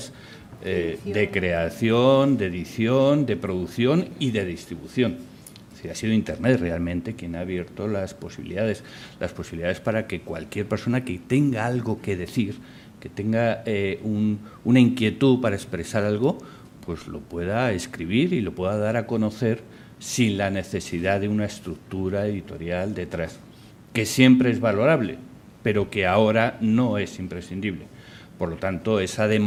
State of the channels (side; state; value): both; identical; correlation 1.00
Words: de creación, de edición, de producción y de distribución. Es decir, ha sido Internet realmente quien ha abierto las posibilidades para que cualquier persona que tenga algo que decir, que tenga una inquietud para expresar algo, pues lo pueda escribir y lo pueda dar a conocer sin la necesidad de una estructura editorial detrás, que siempre es valorable, pero que ahora no es imprescindible. Por lo tanto, esa